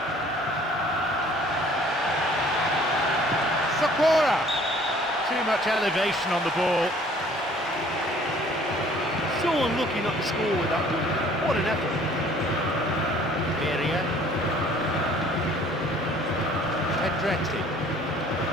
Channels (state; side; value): normal; both; correlation 0.55